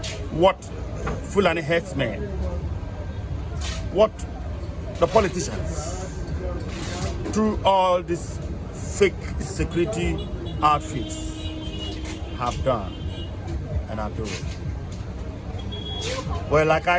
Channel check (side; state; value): both; identical; correlation 1.00